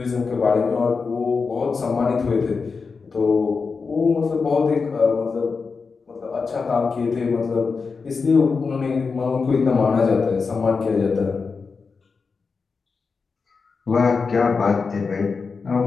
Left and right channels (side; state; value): right; quieter; 4.9 dB